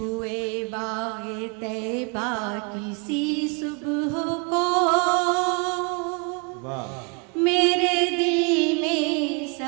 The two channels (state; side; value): quieter; left; 33.5 dB